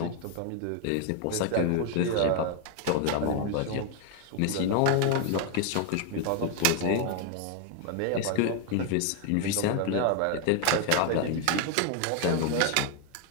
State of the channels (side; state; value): both; different; correlation 0.00